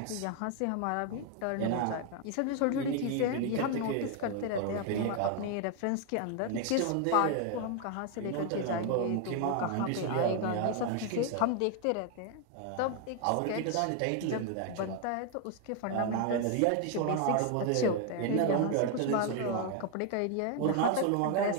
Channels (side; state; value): both; different; correlation 0.01